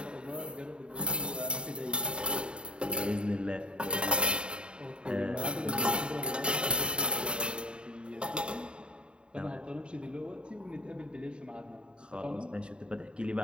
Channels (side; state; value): left; late; 0.053 ms